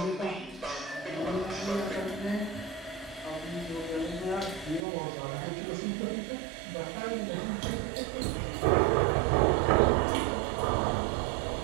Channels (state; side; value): drops out; left; at 4.9 s